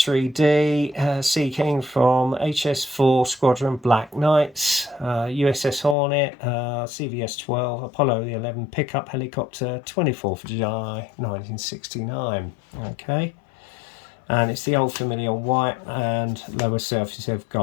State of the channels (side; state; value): right; drops out; at 6.0 s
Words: D Seaking from HS4 Squadron Black Knights, USS Hornet, CVS-12 Apollo the 11 pickup helicopter, 24th of July 1969. Okay. And it's the old familiar white and lower surface of